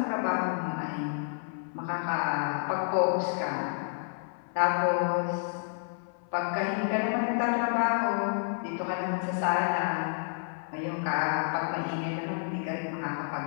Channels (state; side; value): silent; right; 56 dB below the other